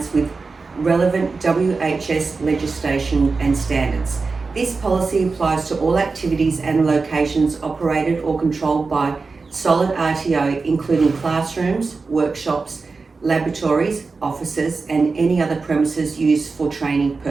with relevant WHS legislation and standards. This policy applies to all activities and locations operated or controlled by Solid RTO, including classrooms, workshops, laboratories, offices and any other premises used for training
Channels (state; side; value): quieter; left; 4.2 dB